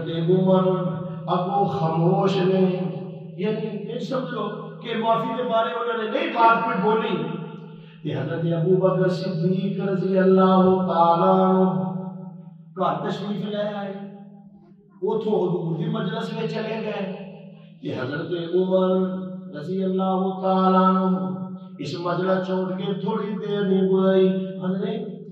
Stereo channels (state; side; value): identical; both; correlation 1.00